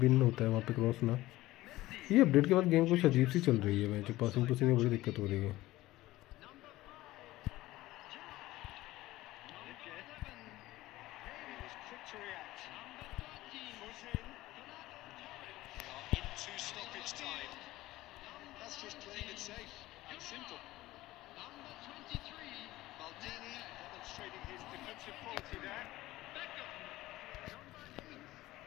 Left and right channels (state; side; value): quieter; right; 17.2 dB